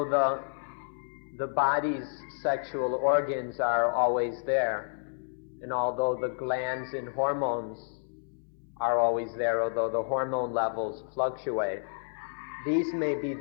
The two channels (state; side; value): silent; right; 58 dB below the other